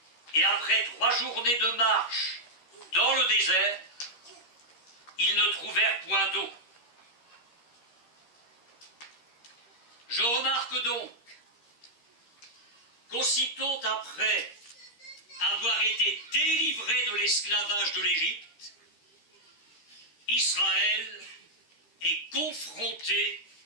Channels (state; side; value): late; right; 13 ms